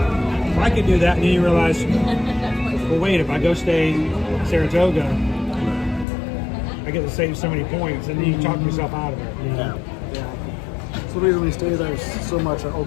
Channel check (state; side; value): drops out; right; at 6.1 s